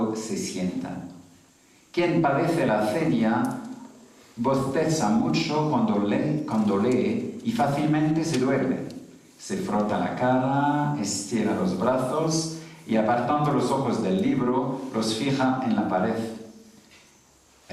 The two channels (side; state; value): both; identical; correlation 1.00